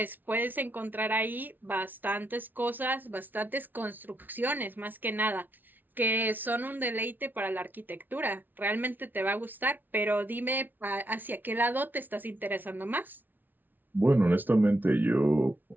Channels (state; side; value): late; left; 0.087 ms